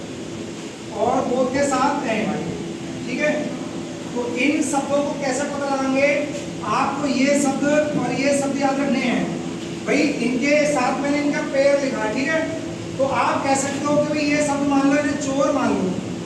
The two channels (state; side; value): identical; both; correlation 1.00